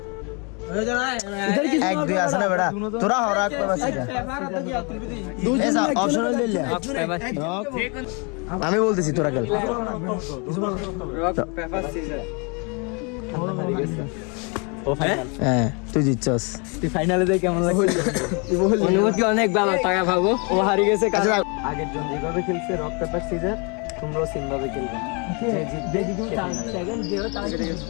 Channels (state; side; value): quieter; right; 32.9 dB